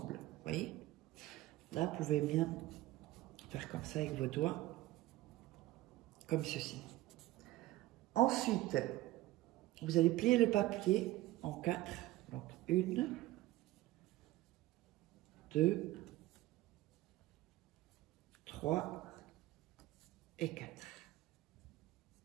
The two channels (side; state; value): left; quieter; 16.9 dB